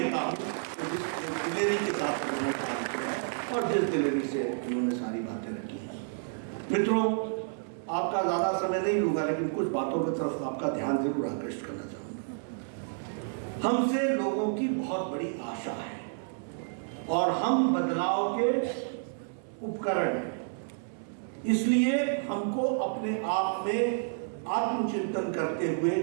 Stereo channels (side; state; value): left; silent; 55 dB below the other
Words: हूँ तो जिस दिलेरी के साथ उन्होंने काम किया और जिस दिलेरी से उन्होंने सारी बातें रखी हैं। मित्रों, आपका ज़्यादा समय नहीं लूँगा, लेकिन कुछ बातों की तरफ आपका ध्यान जरूर आकृष्ट करना चाहूँगा। हमसे लोगों की बहुत बड़ी आशा है और हम बदलाव के उपकरण हैं। इसलिए हमको अपने आप में आत्मचिंतन करते हुए